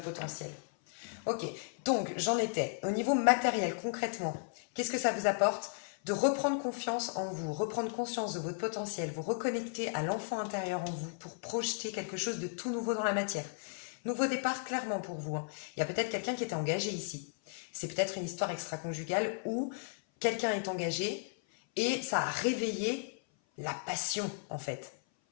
potentiel. Ok, donc j'en étais. Au niveau matériel, concrètement, qu'est-ce que ça vous apporte? De reprendre confiance en vous, reprendre conscience de votre potentiel, vous reconnecter à l'enfant intérieur en vous pour projeter quelque chose de tout nouveau dans la matière. Nouveau départ, clairement pour vous. Il y a peut-être quelqu'un qui était engagé ici. C'est peut-être une histoire extra-conjugale où quelqu'un est engagé et ça a réveillé la passion, en fait.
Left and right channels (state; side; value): silent; right; 55 dB below the other